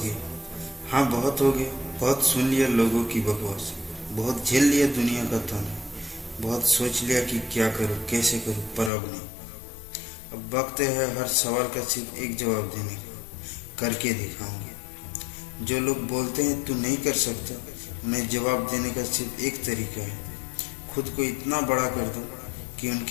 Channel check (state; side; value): drops out; right; at 8.9 s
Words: हाँ बहुत हो गया। बहुत सुन लिया लोगों की बकवास, बहुत झेल लिया दुनिया का ताना, बहुत सोच लिया कि क्या करूँ कैसे करूँ, पर अब नहीं। अब वक्त है हर सवाल का सिर्फ एक जवाब देने का, करके दिखाऊंगा। जो लोग बोलते हैं तू नहीं कर सकता, उन्हें जवाब देने का सिर्फ एक तरीका है, खुद को इतना बड़ा कर दो कि